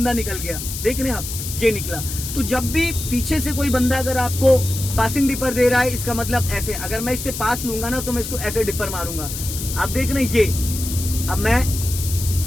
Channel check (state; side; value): noise; left; hiss, 7 dB below the sound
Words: निकल गया, देख रहे हैं आप, ये निकला। तो जब भी पीछे से कोई बंदा अगर आपको पासिंग डिपर दे रहा है, इसका मतलब ऐसे, अगर मैं इससे पास लूंगा ना तो मैं इसको ऐसे डिपर मारूंगा। आप देख रहे हैं ये, अब